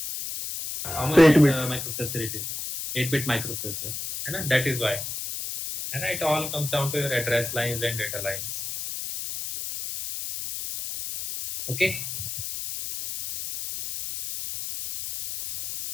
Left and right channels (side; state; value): left; noise; hiss, 6 dB below the sound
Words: How much 8-bit. microprocessor it is? 8-bit microprocessor. And that is why. And it all comes down to your address lines and data lines. Okay.